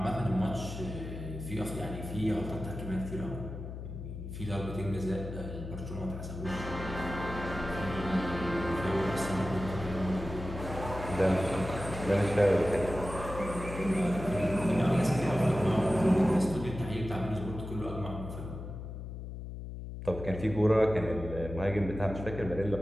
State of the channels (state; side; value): noise; left; hum, 8 dB below the sound